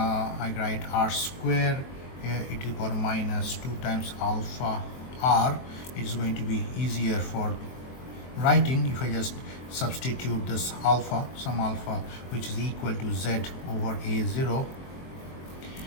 write r square e to the power minus 2 times alpha r. It is going to be easier for writing if I just substitute this alpha, some alpha, which is equal to z over a0,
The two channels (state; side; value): late; right; 23 ms